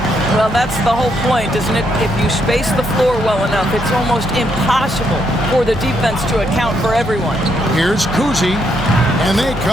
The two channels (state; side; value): noise; left; hum, 22 dB below the sound